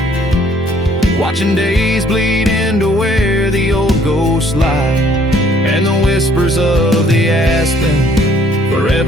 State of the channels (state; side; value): normal; both; correlation 0.61